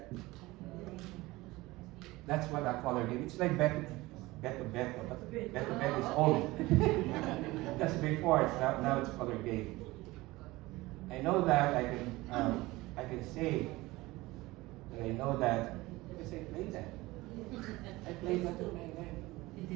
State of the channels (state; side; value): quieter; left; 20.1 dB